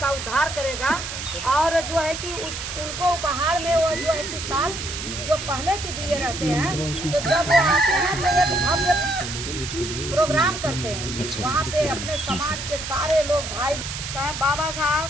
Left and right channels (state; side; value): noise; right; hiss, 7 dB below the sound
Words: का उद्धार करेगा, और जो है कि उनको उपहार में वो जो है कि साल जो पहले की दिए रहते हैं, तो जब वो आते हैं तो एक भव्य प्रोग्राम करते हैं। वहाँ पे अपने समाज के सारे लोग भाई कहें बाबा साहब